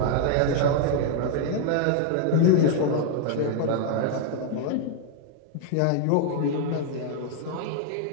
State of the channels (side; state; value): both; different; correlation 0.00